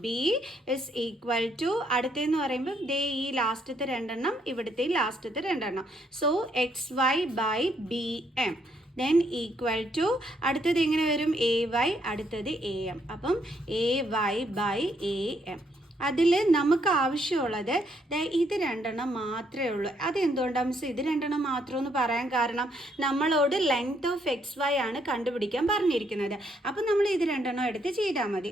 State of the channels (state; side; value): normal; both; correlation 0.72